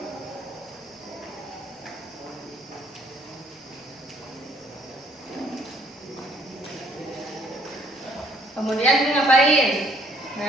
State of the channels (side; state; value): both; normal; correlation 0.64